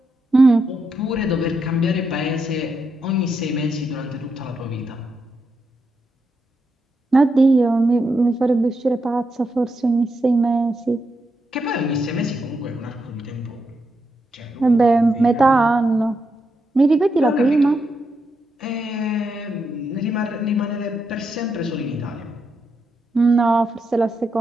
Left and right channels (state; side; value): normal; both; correlation 0.83